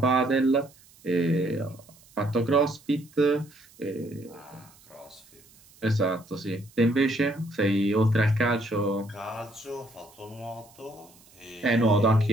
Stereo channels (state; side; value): noise; right; hiss, 27 dB below the sound